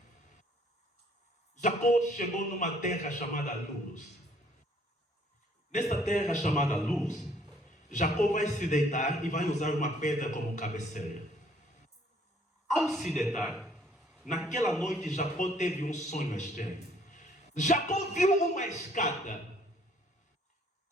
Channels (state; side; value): normal; both; correlation 0.62